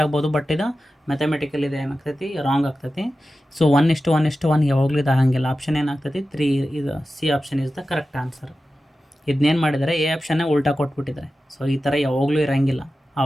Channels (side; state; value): both; normal; correlation 0.93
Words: ಆಗ್ಬೋದು. ಬಟ್ ಇದು ಮ್ಯಾಥಮೆಟಿಕಲ್ ಇದು ಏನಾಗ್ತೈತಿ, ರಾಂಗ್ ಆಗ್ತೈತಿ. ಸೊ 1:1:1 ಯಾವಾಗಲೂ ಇದು ಆಗಂಗಿಲ್ಲ. ಆಪ್ಷನ್ ಏನಾಗ್ತೈತಿ 3. ಇದು C option is the correct answer. ಇದನ್ನೇನು ಮಾಡಿದ್ದಾರೆ, ಎ ಆಪ್ಷನ್ನೇ ಉಲ್ಟಾ ಕೊಟ್ಬಿಟ್ಟಿದ್ದಾರೆ. ಸೊ ಈ ಥರ ಯಾವಾಗಲೂ ಇರೋಂಗಿಲ್ಲ.